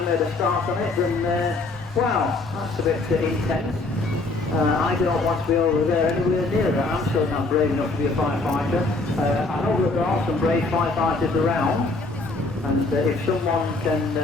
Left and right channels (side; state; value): right; quieter; 3.3 dB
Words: made a start on it than, wow, that's a bit intense. I don't want to be over there anywhere near that. I'm certainly not brave enough to be a firefighter. I know that there are some brave firefighters around. And if someone can